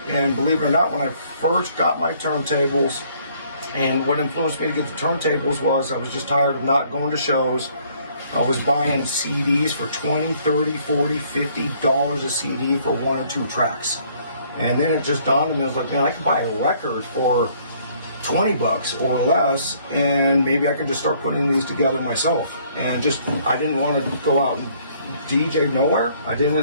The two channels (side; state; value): both; inverted; correlation -0.62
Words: And believe it or not, when I first got my turntables, and what influenced me to get the turntables was I was just tired of not going to shows. I was buying CDs for $20, $30, $40, $50 a CD for 1 or 2 tracks. And then it just dawned on me, I was like, man, I could buy a record for $20 or less, and maybe I could just start putting these together myself. And just, I didn't want to go out and DJ nowhere. I